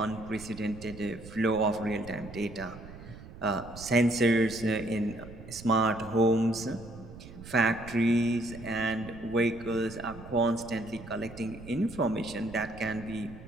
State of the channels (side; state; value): right; noise; rumble, 15 dB below the sound